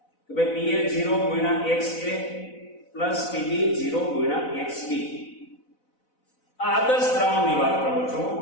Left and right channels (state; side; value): late; right; 4.0 ms